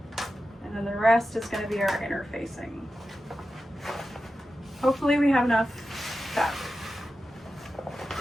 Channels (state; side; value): normal; both; correlation 0.92